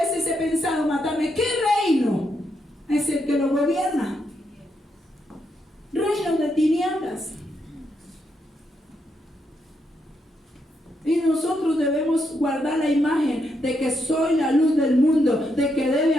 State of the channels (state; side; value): normal; both; correlation 0.80